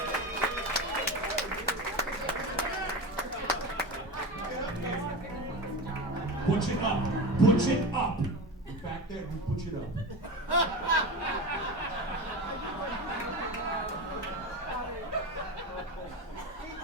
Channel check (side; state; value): both; normal; correlation 0.25